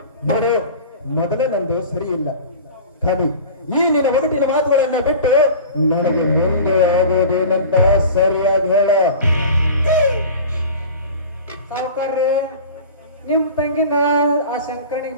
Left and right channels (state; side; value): inverted; both; correlation -0.38